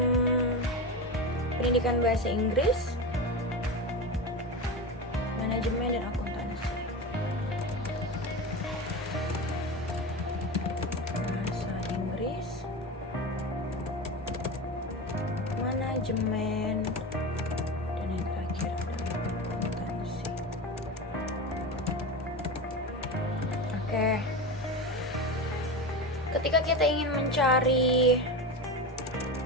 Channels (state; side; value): normal; both; correlation 0.22